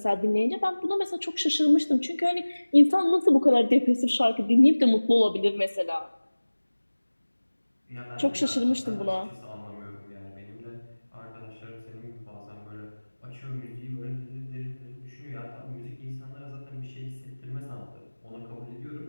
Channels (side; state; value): both; inverted; correlation -1.00